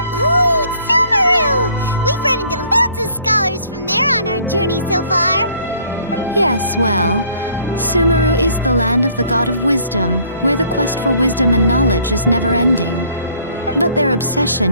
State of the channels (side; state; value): both; inverted; correlation -0.59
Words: Ooh, Sumeru! We've run into loads of scholars from there on our journey so far. Yes, well, Sumeru is the land of the god of wisdom, where the quest for wisdom and knowledge is never-ending. But their